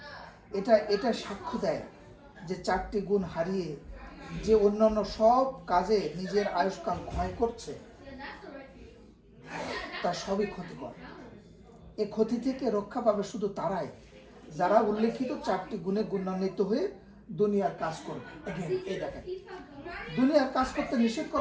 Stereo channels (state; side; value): identical; both; correlation 1.00